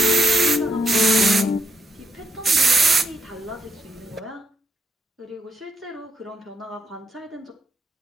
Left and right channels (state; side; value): normal; both; correlation 0.76